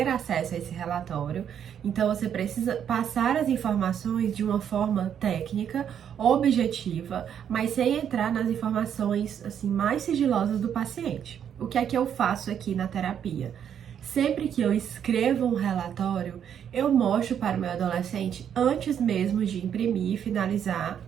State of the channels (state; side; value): quieter; left; 8.8 dB